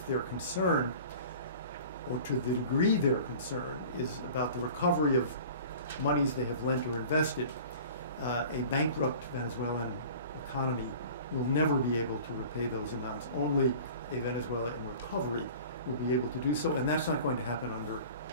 their concern, or to the degree their concern, is about the recovery of monies they have lent or invested, a bankrupt Venezuelan economy will never be able to repay those amounts. Only a Venezuela in recovery will be able to do so, and that's not going to happen under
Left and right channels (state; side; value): inverted; both; correlation -0.42